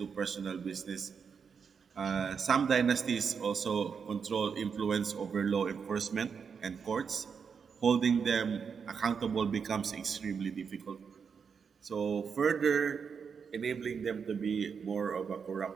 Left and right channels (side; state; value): left; quieter; 6.3 dB